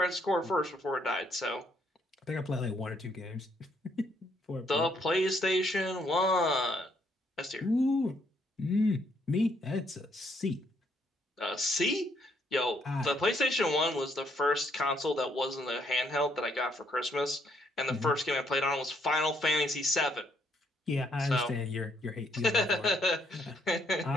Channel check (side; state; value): both; normal; correlation 0.71